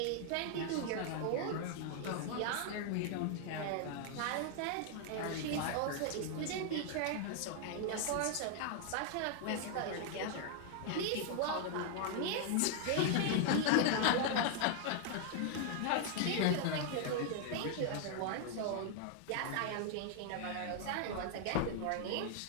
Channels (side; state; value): both; different; correlation 0.00